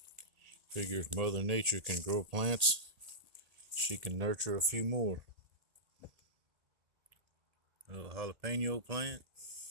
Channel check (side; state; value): left; late; 1.8 ms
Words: Figure if Mother Nature can grow plants, she can nurture a few more. A little jalapeno plant.